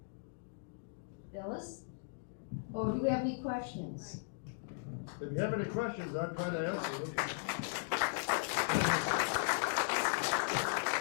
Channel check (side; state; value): right; silent; digital silence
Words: Phyllis? Oh, do we have any questions? If you have any questions, I'll try to answer them.